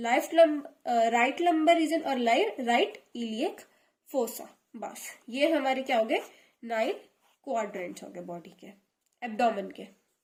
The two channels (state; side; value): identical; both; correlation 1.00